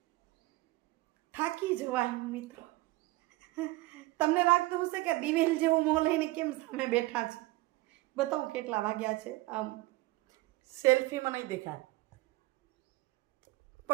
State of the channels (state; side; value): quieter; left; 20.1 dB